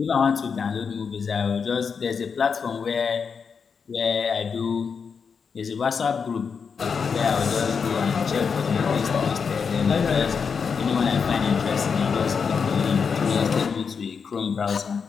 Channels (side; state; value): right; quieter; 6.0 dB